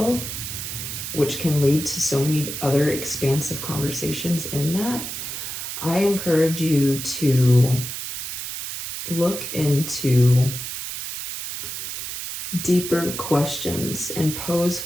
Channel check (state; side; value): noise; right; hiss, 6 dB below the sound